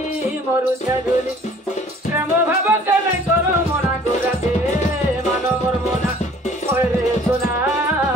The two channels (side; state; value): both; normal; correlation 0.53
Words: प्रेम भाव के नहीं करो मना गोराते मानो मोर मना ओरे सोना